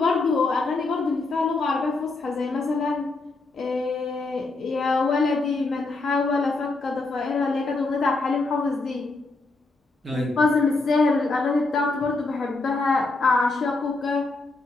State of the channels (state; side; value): quieter; right; 3.4 dB